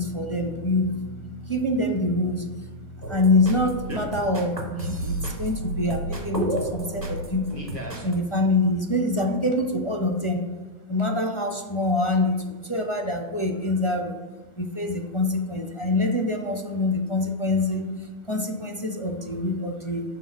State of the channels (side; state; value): right; late; 1.4 ms